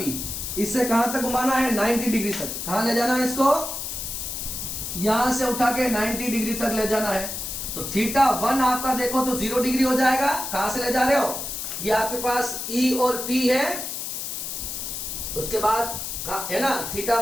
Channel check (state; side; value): noise; left; hiss, 5 dB below the sound